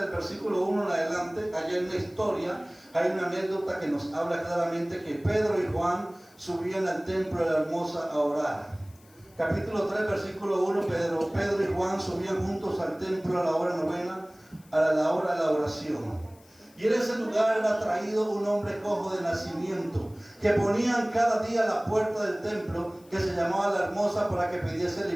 versículo 1 en adelante. Allí hay una historia, hay una anécdota que nos habla claramente que Pedro y Juan subían al templo de la Hermosa a orar. Capítulo 3, versículo 1, Pedro y Juan subían juntos al templo a la hora novena, a la hora de la oración. Y en ese lugar era traído un hombre cojo de nacimiento, que ponían cada día a la puerta del templo, que se llamaba la Hermosa, para que pidiese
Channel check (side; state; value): left; noise; hiss, 28 dB below the sound